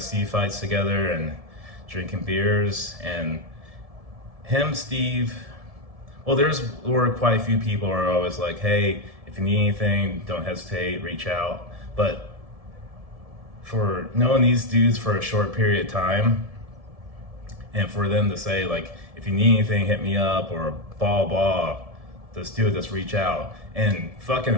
fights together and drinking beers. And him, Steve, well, were quite a few people who are always like, hey, if you need anything, don't hesitate, reach out. But for knowing these dudes for a short period of time, and for them to say like, if you need anything, hit me up, or blah, just do it, just reach out, and fucking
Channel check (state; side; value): late; left; 1.7 ms